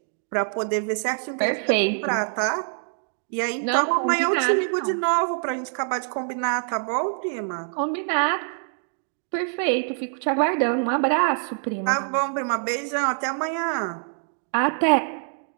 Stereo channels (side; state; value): left; silent; digital silence